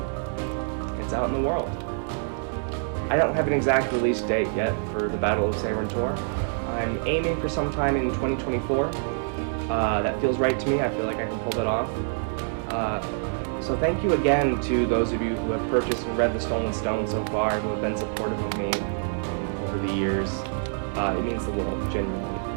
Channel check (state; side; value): silent; left; digital silence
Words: It's out in the world. I don't have an exact release date yet for the Battle of Sehran Tor. I'm aiming for sometime in 2024. That feels right to me. I feel like I can pull that off. So thank you again to those of you who have purchased and read The Stolen Stone so far, who have been supportive of me over the years. It means the world, genuinely.